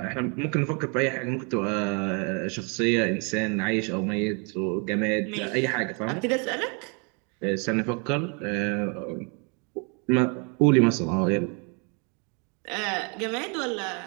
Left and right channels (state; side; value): quieter; left; 34.7 dB